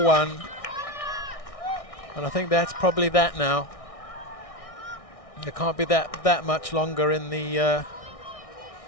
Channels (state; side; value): late; right; 1.6 ms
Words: And I think that's probably that now. There can't be that much longer in the